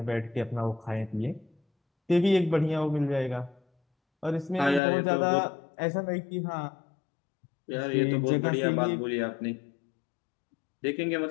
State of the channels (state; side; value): drops out; right; at 4.8 s